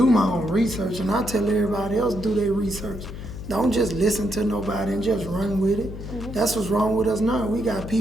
my own research, and I tell everybody else do their research. Don't just listen to nobody and just run with it. That's what's wrong with us now. We got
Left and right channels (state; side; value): noise; left; hum, 10 dB below the sound